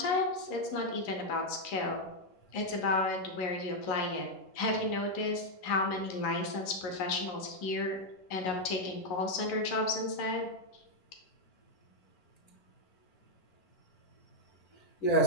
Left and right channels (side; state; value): right; late; 11 ms